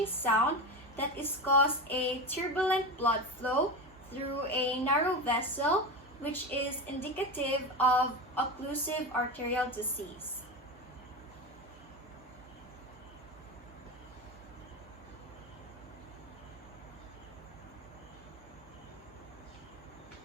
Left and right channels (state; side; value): normal; both; correlation 0.22